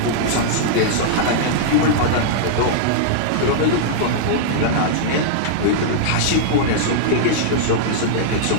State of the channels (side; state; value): both; different; correlation -0.02